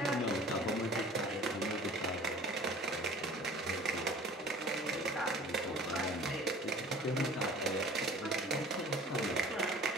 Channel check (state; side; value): normal; both; correlation 0.46